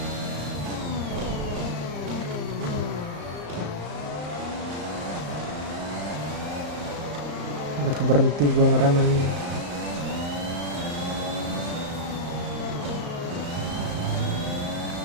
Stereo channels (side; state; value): left; late; 35 ms